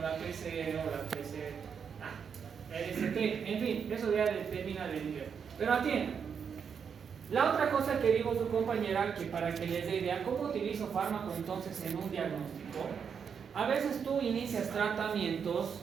la PC o la PC, la ST, en fin, eso ya determina el nivel. Pero atienda. La otra cosa que dijo su compañera, que para que les dé idea, ¿cómo utilizo fármaco entonces en un diagnóstico? A veces tú inicias tratamientos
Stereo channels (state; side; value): quieter; left; 6.9 dB